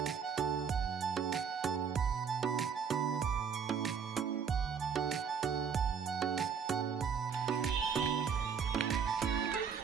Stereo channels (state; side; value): quieter; left; 6.7 dB